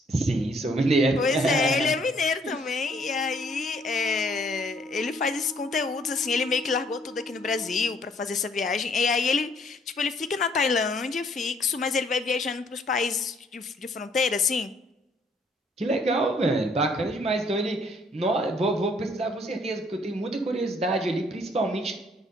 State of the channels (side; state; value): both; normal; correlation 0.65